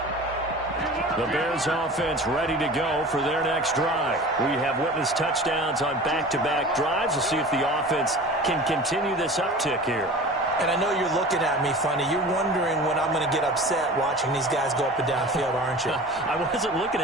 The Bears offense ready to go for their next drive. We have witnessed touchdowns on back-to-back drives. We'll see if the offense can continue this uptick here. And I know you're looking at me funny. You're wondering when I'm going to get upset watching these guys go up and down field, aren't you? I wasn't looking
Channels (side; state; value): both; normal; correlation 0.38